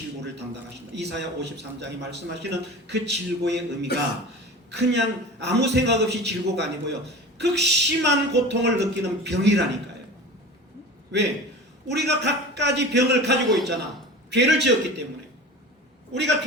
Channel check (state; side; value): normal; both; correlation 0.35